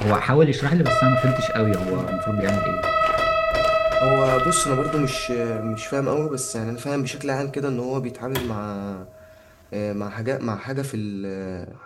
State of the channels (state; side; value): identical; both; correlation 1.00